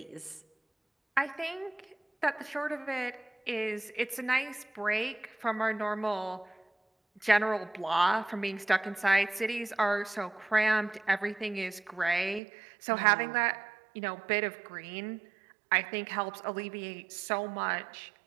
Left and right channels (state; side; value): drops out; left; at 12.4 s